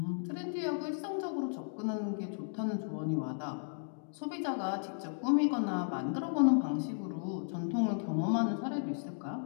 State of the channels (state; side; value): silent; right; digital silence